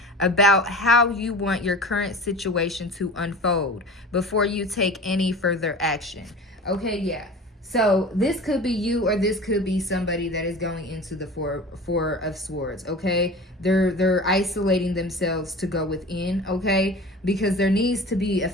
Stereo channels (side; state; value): both; normal; correlation 0.37